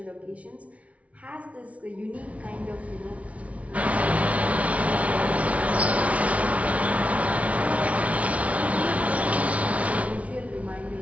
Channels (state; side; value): late; left; 0.066 ms